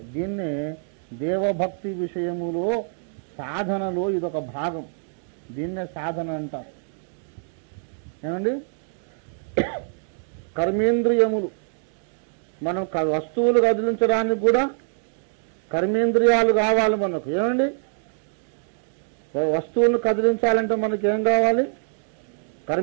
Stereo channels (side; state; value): left; silent; digital silence